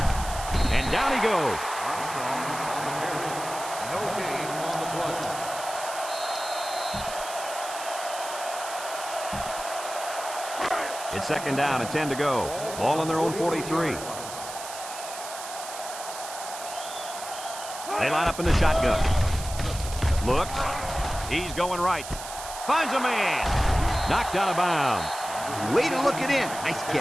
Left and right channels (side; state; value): right; noise; hiss, 10 dB below the sound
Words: And down he goes. No gain on the play. It's second down and 10 to go. Ball on their own 43. They line up in the shotgun. Looks. He's going right. Finds a man. Knocked out of bounds. Way to look it in. Nice